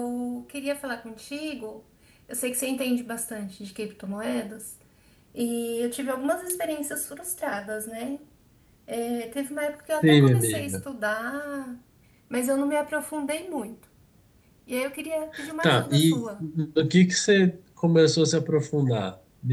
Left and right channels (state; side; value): identical; both; correlation 1.00